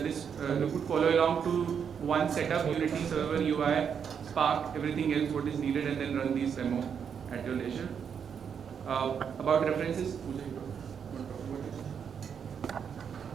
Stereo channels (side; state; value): left; quieter; 7.3 dB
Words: you could follow along to one setup, Unity server, UI, Spark, everything else what is needed, and then run these demo at your leisure. About references, Puja, you want to talk about it?